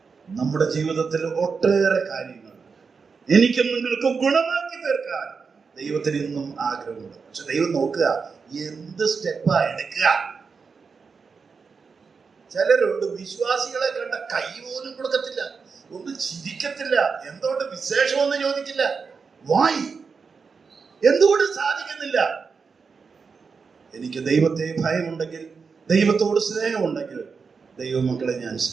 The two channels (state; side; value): quieter; left; 5.3 dB